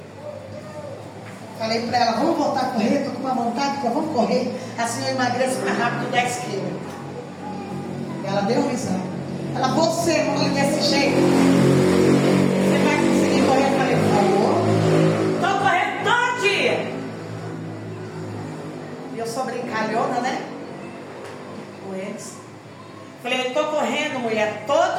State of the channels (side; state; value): both; identical; correlation 1.00